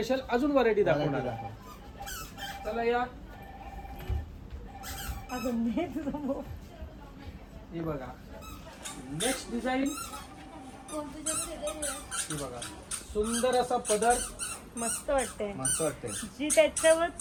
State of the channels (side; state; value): both; identical; correlation 1.00